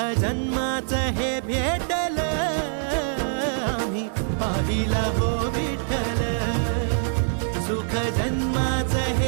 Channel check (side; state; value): left; silent; digital silence